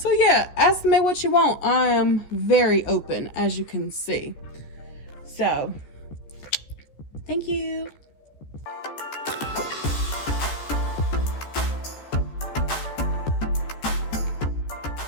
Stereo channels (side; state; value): right; late; 14 ms